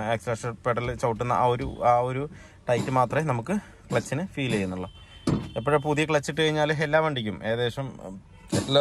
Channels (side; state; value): both; identical; correlation 1.00